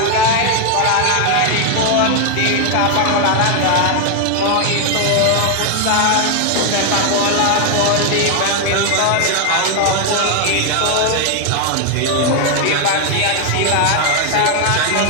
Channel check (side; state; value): both; different; correlation 0.00